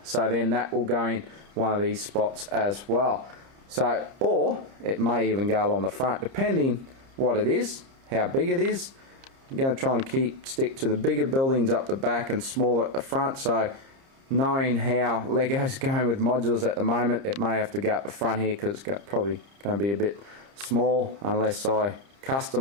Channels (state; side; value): late; left; 30 ms